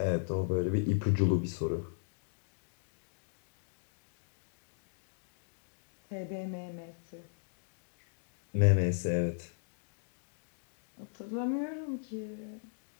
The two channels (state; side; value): silent; right; digital silence